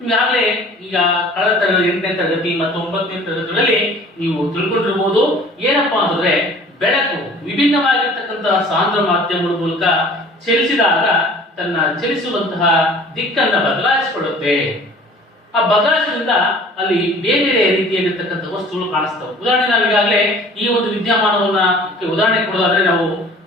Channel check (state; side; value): normal; both; correlation 0.48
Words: ಈಗಾಗಲೇ ಈಗ ಕಳೆದ ತರಗತಿ 8ನೇ ತರಗತಿ ಮತ್ತು 9ನೇ ತರಗತಿಗಳಲ್ಲಿ ನೀವು ತಿಳ್ಕೊಂಡಿರ್ಬೋದು. ಏನಪ್ಪಾ ಅಂತಂದ್ರೆ ಬೆಳಕು ವಿಭಿನ್ನವಾಗಿರ್ತಕ್ಕಂತಹ ಸಾಂದ್ರ ಮಾಧ್ಯಮಗಳ ಮೂಲಕ ಚಲಿಸಿದಾಗ ತನ್ನ ಚಲಿಸುವಂತಹ ದಿಕ್ಕನ್ನ ಬದಲಾಯಿಸಿಕೊಳ್ಳುತ್ತೆ. ಆ ಬದಲಾಯಿಸೋದ್ರಿಂದ ಅಲ್ಲಿ ಬೇರೆ ಬೇರೆ ರೀತಿಯಾಗಿರ್ತಕ್ಕಂಥ ವಸ್ತುಗಳು ಕಾಣಿಸ್ತವೆ. ಉದಾಹರಣೆ ನಾವು ಈಗಾಗಲೇ ಈ ಒಂದು ವಿದ್ಯಮಾನವನ್ನ ಉದಾಹರಣೆ ಕೊಡೋದಾದ್ರೆ, ನಾವು